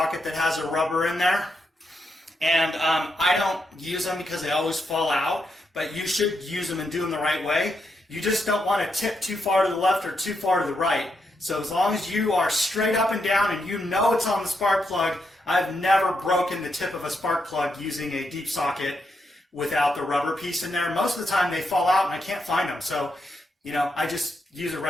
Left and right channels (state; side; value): normal; both; correlation 0.82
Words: that has a rubber in there. And I don't use them because they always fall out, but you should use them and do them the right way. You just don't want to tip too far to the left or too far to the right. So as long as you are straight up and down and you know it's on the spark plug, I've never broken the tip of a spark plug using a deep socket without the rubber piece in there. Most of the time they fall out and I can't find them. So, I just use a